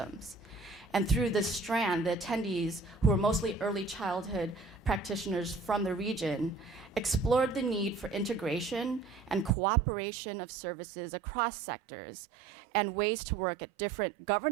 And through this strand, the attendees, who were mostly early childhood practitioners from the region, explored the need for integration and cooperation of services across sectors and ways to work at different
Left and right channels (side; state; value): left; drops out; at 9.5 s